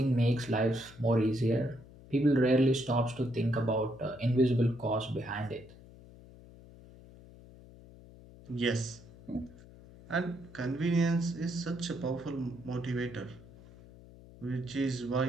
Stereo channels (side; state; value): left; noise; hum, 20 dB below the sound